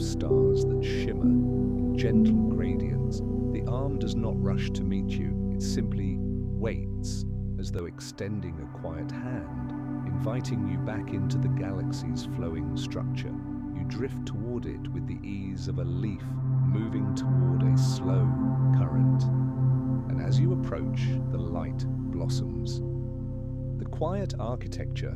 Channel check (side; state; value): both; identical; correlation 1.00